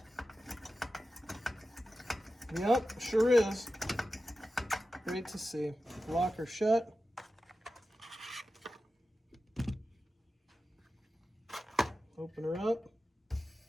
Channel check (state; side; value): normal; both; correlation 0.93